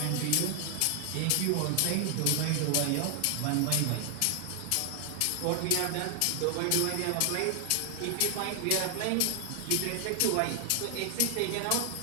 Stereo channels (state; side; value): different; both; correlation 0.00